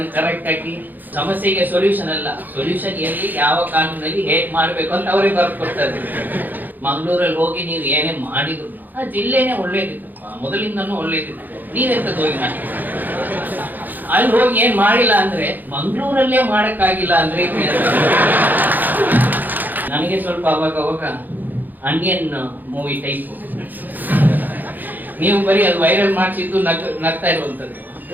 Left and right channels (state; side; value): late; left; 0.086 ms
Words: ಕರೆಕ್ಟ್ ಆಗಿ, ಸಮಸ್ಯೆಗೆ ಸೊಲ್ಯೂಷನ್ ಅಲ್ಲ, ಸೊಲ್ಯೂಷನ್ ಎಲ್ಲಿ ಯಾವ ಕಾನೂನಲ್ಲಿ ಹೇಗ್ ಮಾಡ್ಬೇಕು ಅಂತ ಅವರೇ ಬರ್ಕೊಡ್ತಾರೆ. ಮಂಗಳೂರಲ್ಲಿ ಹೋಗಿ ನೀವು ಏನೇ ಮಾಡಿದ್ರು ಆ ಜಿಲ್ಲೆನೇ ಒಳ್ಳೇದಿತ್ತು, ಮೊದಲಿಂದನೂ ಒಳ್ಳೇದಿತ್ತು. ನೀವೆಂತದ್ದು ಹೋಗಿ ಮಾಡಿ ಅಲ್ಲಿ ಹೋಗಿ ಏನ್ ಮಾಡಿಲ್ಲ ಅಂದ್ರೆ ಮಂಗಳೂರಲ್ಲೇ ಮಾಡಕ್ಕಾಗಿಲ್ಲ ಅಂದ್ರೆ ನನಗೆ ಸ್ವಲ್ಪ ಅವಾಗ ಅನಿಯನ್ ಮೂವಿ ಟೈಪ್. ನೀವು ಬರೀ ಅದು ವೈರಲ್ ಮಾಡಿಸಿದ್ದು ನಗ್ತಾ ಇರುವಂತದ್ದು.